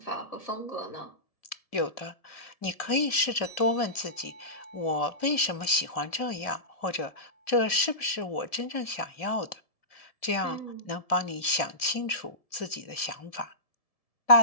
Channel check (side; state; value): right; late; 1.7 ms